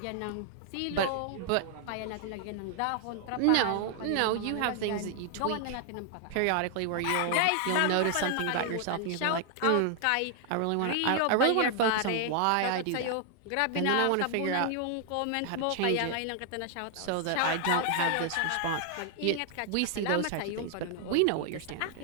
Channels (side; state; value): both; different; correlation 0.00